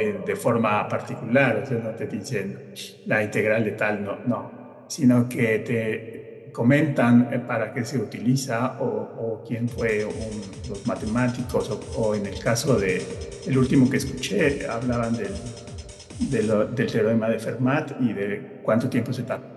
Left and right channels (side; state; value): both; identical; correlation 1.00